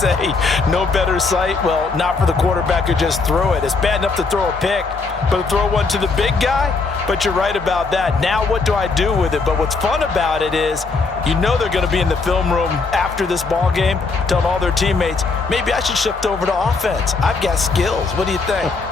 no better sight? Well, not for the quarterback who just threw it. It's bad enough to throw a pick, but to throw one to the big guy? But you're right about that. Now what do I do with it? But what's fun about it is you know they're going to be in the film room after this ball game telling all their teammates, maybe I should shift over to offense. I've got skills. What do you think?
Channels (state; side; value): quieter; right; 4.2 dB